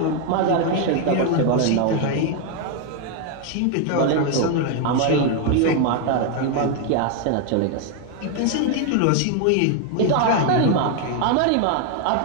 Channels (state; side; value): different; both; correlation 0.01